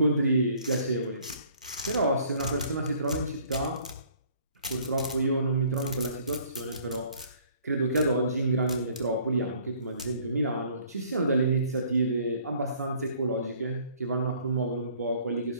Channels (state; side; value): inverted; both; correlation -0.58